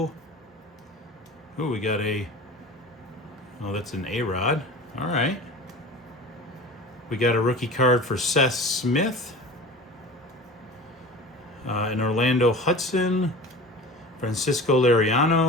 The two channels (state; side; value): normal; both; correlation 0.36